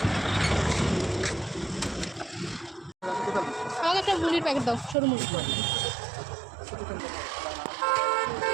আমাকে একটা মুড়ির প্যাকেট দাও, সরু মুড়ি।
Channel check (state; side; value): drops out; left; at 5.0 s